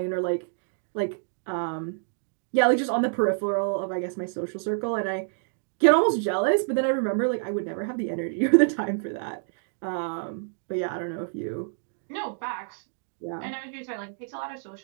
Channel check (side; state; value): left; silent; digital silence